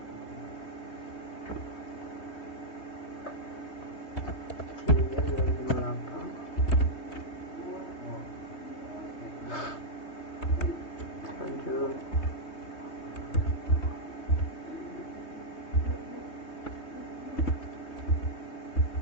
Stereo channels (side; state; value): right; late; 3.2 ms